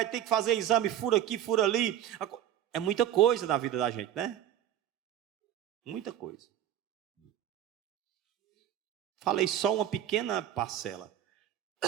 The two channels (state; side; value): quieter; left; 11.2 dB